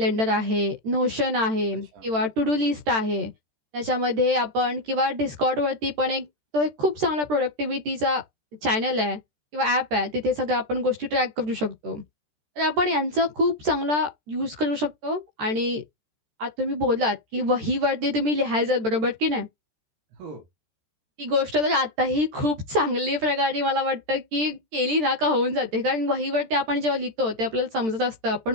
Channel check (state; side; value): late; left; 13 ms